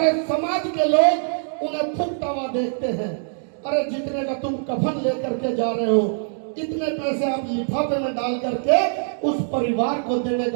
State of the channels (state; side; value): silent; left; digital silence